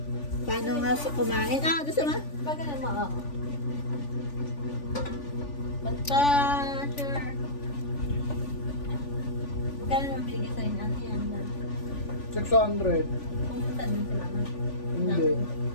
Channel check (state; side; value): late; right; 3.5 ms